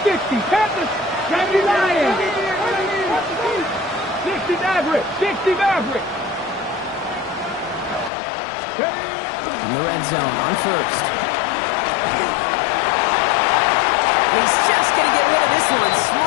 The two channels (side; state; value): right; drops out; at 8.1 s